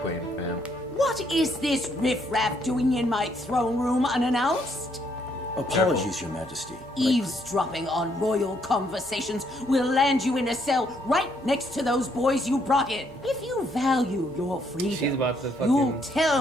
Queen, fam. What is this riffraff doing in my throne room unannounced? Apologies, Your Majesty. Eavesdropping on royal conversations will land you in a cell right next to those boys you brought in. If you value your freedom, She's about to you'll fucking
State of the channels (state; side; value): normal; both; correlation 0.71